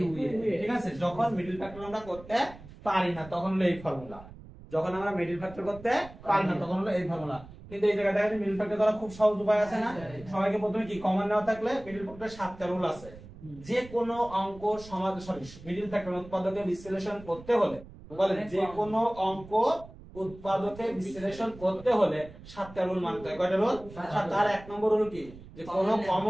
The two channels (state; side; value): noise; right; rumble, 18 dB below the sound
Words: ঠিক আছে যখন মিডল ফ্যাক্টর আমরা করতে পারি না তখন হলো এই ফর্মুলা যখন আমরা মিডল ফ্যাক্টর করতে পারি না তখন হলো এই ফর্মুলা কিন্তু এই জায়গায় দেখেন মিডল ফ্যাক্টর করা খুব সহজ উপায় আছে না সবাইকে প্রথমে কি কমন নেওয়া থাকলে মিডল ফ্যাক্টর 7টা রুল আছে যে কোনো অঙ্ক সমাধান মিডল ফ্যাক্টর উৎপাদকে বিশ্লেষণ করতে হলে বলেন যে কোনো অঙ্ক উৎপাদকে বিশ্লেষণ করতে হলে 7টা রুল মানতে হয় কয়টা রুল 7 তার এক নম্বর রুল কি যে কোনো